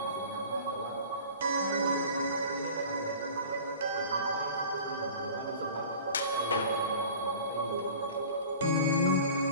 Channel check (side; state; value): both; inverted; correlation -0.41